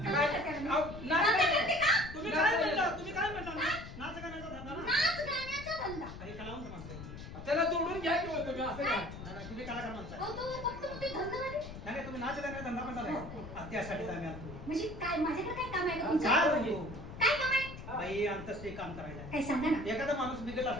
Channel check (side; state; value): left; noise; rumble, 12 dB below the sound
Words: करते मी. अहो, नाच धंदा काय? करते का? तुम्ही काय म्हणता तुम्ही काय म्हणता नाच गाण्याचा धंदा ना नाच गाण्याचा धंदा अरे कलावंत माणसं त्याला जोडून घ्या की हो तुम्ही असं काय नाही, तुम्ही कलाकार माणसं आहे. अहो, तो फक्त ते धंदा नाही. नाही तुम्ही नाच गाण्याचा धंदा म्हणता नाही त्यासाठी आम्ही आलो म्हणजे काय माझ्याकडे काय काम आहे का तुमचं? काय म्हणतो काय काम आहे बाई अंतस्ते काम करायला काय सांगा ना एखादा माणूस बिघडला